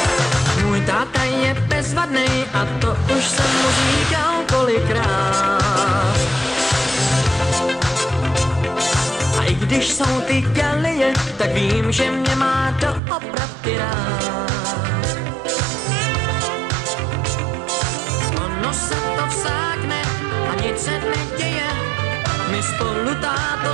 Můj táta je bezvadnej a to už jsem mu říkal kolikrát. A i když jsou ty galeje, tak vím, že mě má doopravdy rád. Ono se to vsákne a nic se neděje, my spolu táto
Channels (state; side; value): drops out; left; at 13.0 s